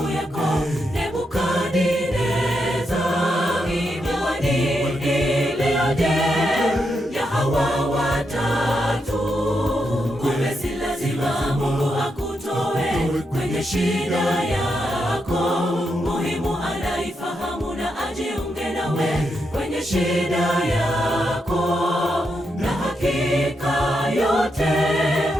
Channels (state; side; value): normal; both; correlation 0.83